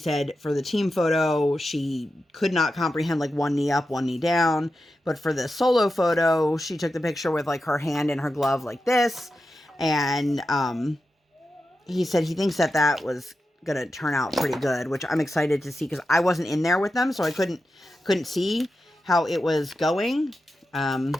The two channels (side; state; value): both; normal; correlation 0.90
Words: for the team photo, she could not comprehend like one knee up, one knee down. But for the solo photo, she took the picture with like her hand in her glove like this. And he said he thinks that was going to turn out pretty good, which I'm excited to see because I wasn't in there with them. So I couldn't see how it was going.